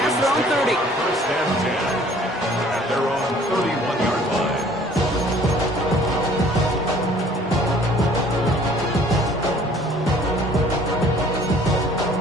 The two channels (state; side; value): normal; both; correlation 0.55